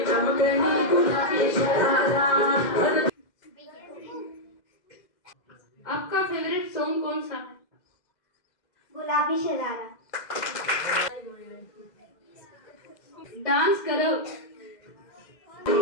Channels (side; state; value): right; late; 2.0 ms